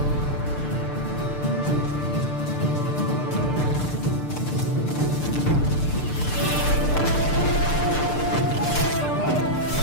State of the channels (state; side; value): late; right; 6.7 ms